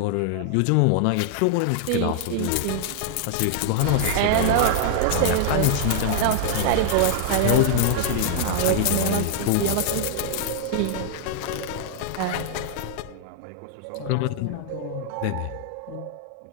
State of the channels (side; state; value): both; different; correlation -0.01